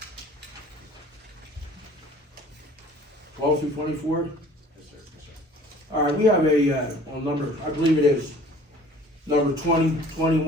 12 through 24? yes, sir, yes, sir. All right, we have a, on number, I believe it is, number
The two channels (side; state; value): both; normal; correlation 0.50